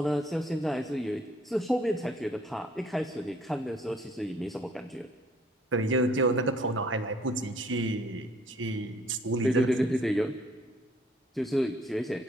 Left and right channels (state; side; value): normal; both; correlation 0.61